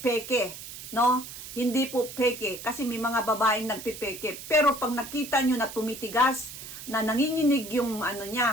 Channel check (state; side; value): noise; right; hiss, 12 dB below the sound